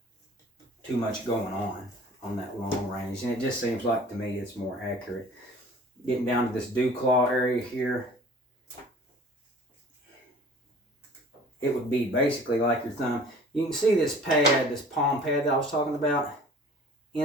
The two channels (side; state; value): both; normal; correlation 0.48